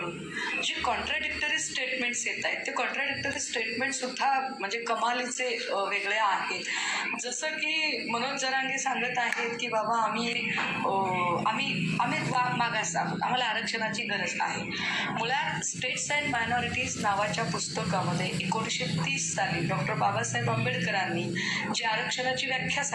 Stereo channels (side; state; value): both; identical; correlation 1.00